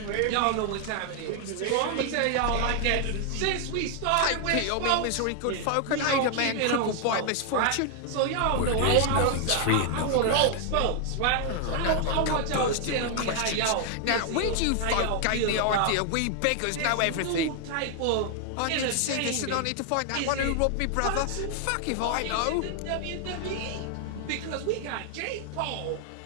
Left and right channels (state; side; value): different; both; correlation 0.00